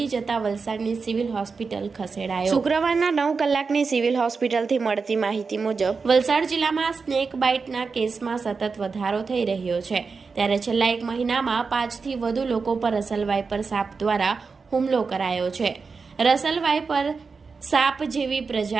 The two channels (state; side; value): quieter; left; 4.8 dB